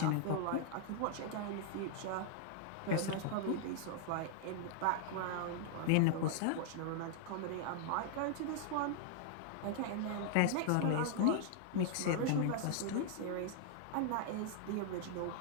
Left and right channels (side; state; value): both; different; correlation -0.01